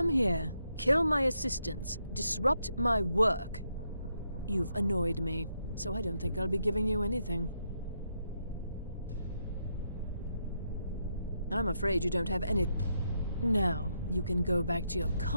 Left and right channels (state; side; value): inverted; both; correlation -0.80